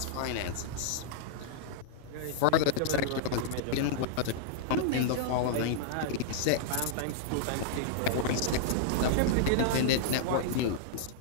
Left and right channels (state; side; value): different; both; correlation -0.02